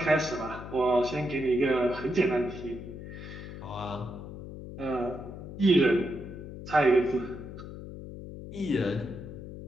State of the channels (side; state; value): left; noise; hum, 11 dB below the sound